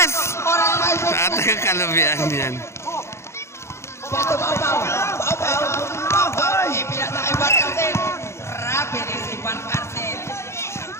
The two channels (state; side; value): late; right; 0.13 ms